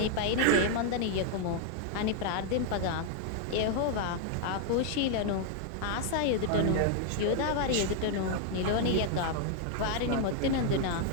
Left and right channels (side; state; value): both; different; correlation 0.00